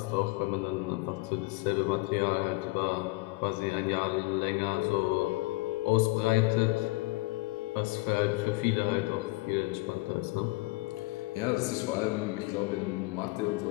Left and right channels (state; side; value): quieter; right; 23.2 dB